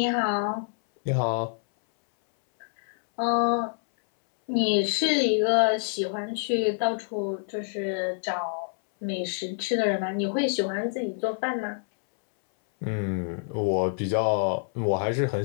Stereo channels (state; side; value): silent; right; 60 dB below the other